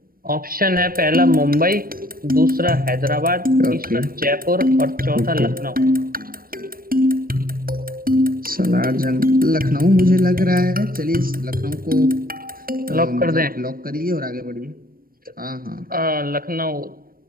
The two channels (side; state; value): left; late; 0.42 ms